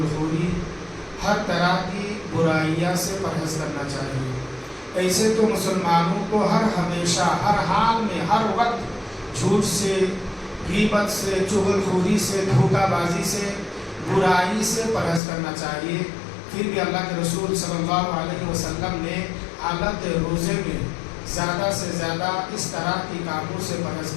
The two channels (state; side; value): drops out; right; at 15.2 s